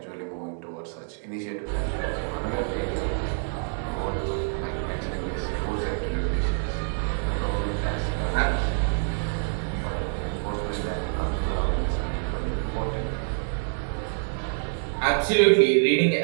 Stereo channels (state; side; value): silent; left; 60 dB below the other